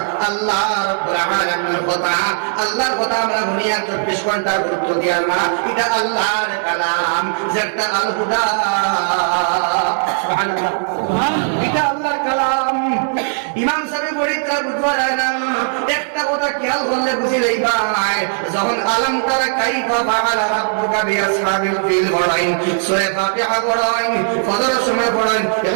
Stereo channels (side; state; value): left; silent; digital silence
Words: আল্লাহ রাব্বুল আলামিনের কথা আল্লাহর কথা আমরা দুনিয়া 24 ঘন্টা গুরুত্ব দিই না এটা আল্লাহর কালাম যেটা আল হুদা সুবহানাল্লাহ এটা আল্লাহর কালাম ইমাম সাহেব বলিতা বুঝবার হয় না একটা কথা খেয়াল করলে বুঝি লই ভাই যখন আলম তারা কাইফা ফাআলা রাব্বুকা বিআসহাবিল ফিল পড়াইন সূরা ফাতিহা পড়াইন ফজরের সময় পড়াইন